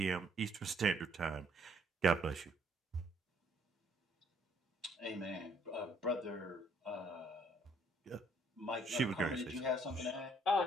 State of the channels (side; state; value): both; normal; correlation 0.65